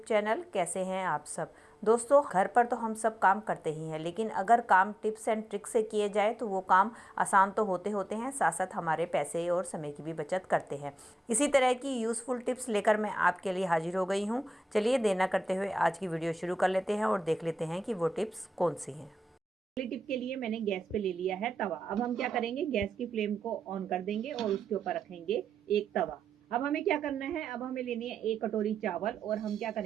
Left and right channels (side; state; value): both; normal; correlation 0.91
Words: channel. कैसे हैं आप सब दोस्तों। घर पर तो हम सब काम करते ही हैं, लेकिन अगर काम टिप्स एंड ट्रिक्स से किए जाए तो वो काम आसान तो होते होते हैं, साथ साथ हमारे पैसे और समय की भी बचत करते हैं। इसी तरह की यूज़फुल टिप्स लेकर मैं आपके लिए हाजिर हो गई हूँ। चलिए देर न करते हुए आज की वीडियो शुरू कर लेते हैं और देख लेते हैं कि वो टिप्स कौन सी हैं। पहली टिप के लिए मैंने गैस पे ले लिया है तवा। अब हम क्या करेंगे, गैस की फ्लेम को ऑन कर देंगे और उसके ऊपर रखेंगे एक तवा। अब हमें क्या करना है, अब हमें लेनी है एक कटोरी चावल और हम क्या